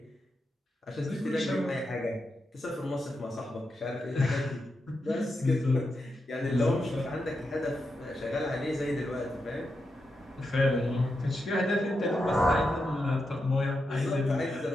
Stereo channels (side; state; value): both; normal; correlation 0.86